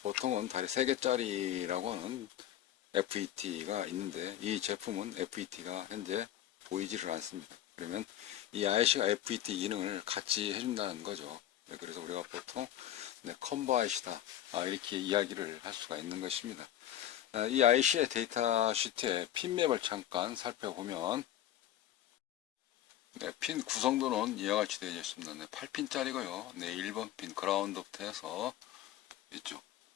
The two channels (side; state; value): right; quieter; 12.1 dB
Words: 다리 3개짜리라고 하는 FET가 있는데 이 제품은 FET가 현재 보이지를 않습니다. 그러면 이 IC가 FET 기능을 같이 해준다는 거죠. 그래서 우리가 보통 컴보 IC다 이렇게 이야기를 할 수가 있는 것입니다. 이 IC의 데이터 시트의 핀맵을 잠깐 살펴보면 핀 구성도는 이와 같이 되어 있습니다. 8핀짜리고요. 1번 핀 그라운드부터 해서 이쪽